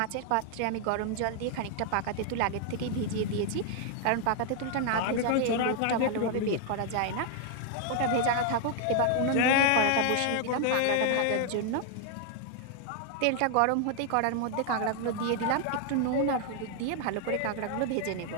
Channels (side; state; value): both; different; correlation 0.00